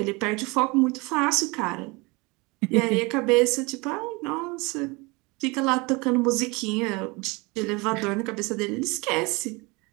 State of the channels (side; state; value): left; quieter; 26.1 dB